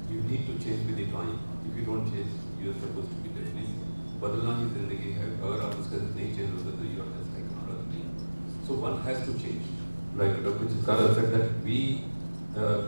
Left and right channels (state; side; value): inverted; both; correlation -1.00